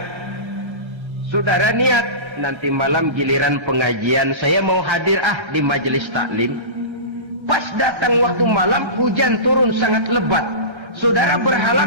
saudara niat, nanti malam giliran pengajian saya mau hadir di majelis taklim. Pas datang waktu malam, hujan turun sangat lebat. Saudara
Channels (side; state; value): left; late; 1.3 ms